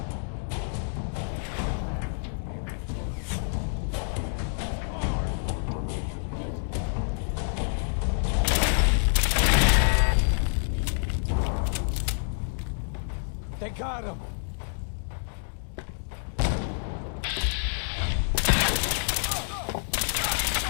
They got him!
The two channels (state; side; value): silent; right; digital silence